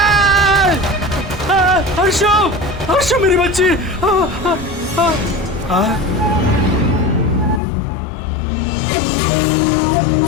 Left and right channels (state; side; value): drops out; right; at 7.6 s